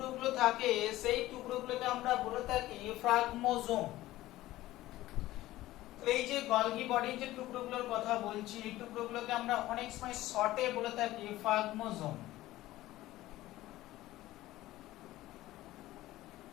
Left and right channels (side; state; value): right; quieter; 16.3 dB